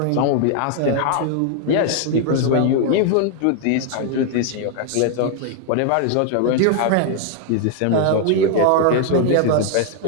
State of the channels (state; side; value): different; both; correlation 0.00